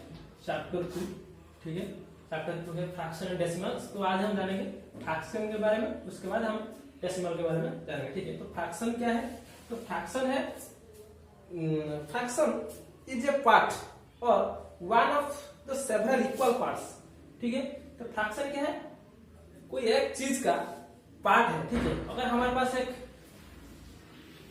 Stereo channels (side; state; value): both; identical; correlation 1.00